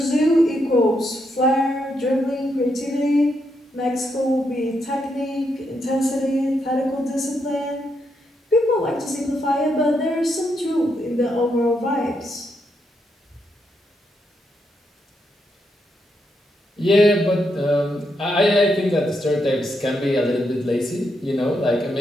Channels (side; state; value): both; normal; correlation 0.80